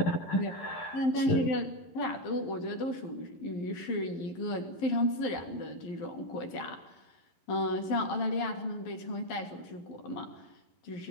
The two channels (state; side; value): late; right; 11 ms